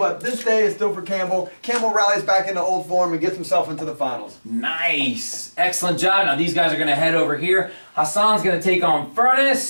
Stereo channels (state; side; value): inverted; both; correlation -1.00